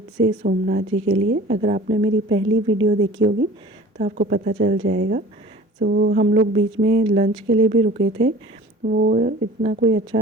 से सोमनाथ जी के लिए। अगर आपने मेरी पहली वीडियो देखी होगी तो आपको पता चल जाएगा। हम लोग बीच में लंच के लिए भी रुके थे। वो इतना कोई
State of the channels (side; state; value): both; normal; correlation 0.44